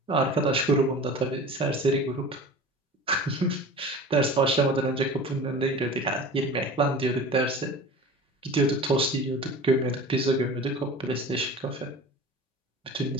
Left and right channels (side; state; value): both; normal; correlation 0.38